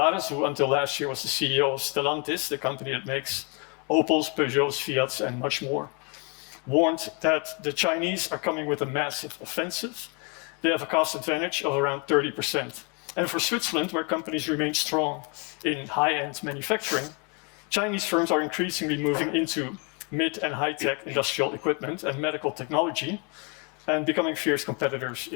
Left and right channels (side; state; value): right; quieter; 33.5 dB